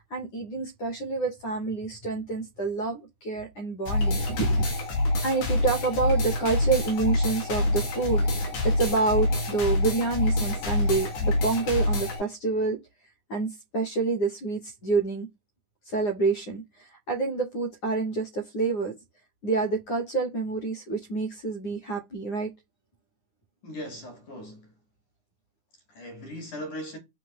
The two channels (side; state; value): right; late; 9.9 ms